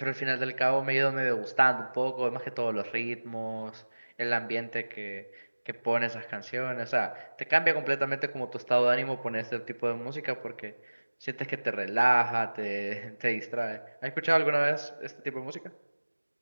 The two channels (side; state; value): both; inverted; correlation -1.00